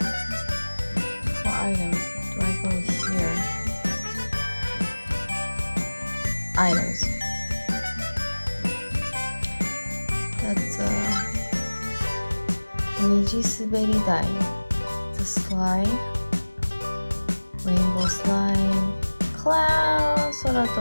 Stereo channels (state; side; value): inverted; both; correlation -1.00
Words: 4 items. Do I go here? Items. That's a Niji Suberi Dai. It's a slide. Rainbow slide. Cloud.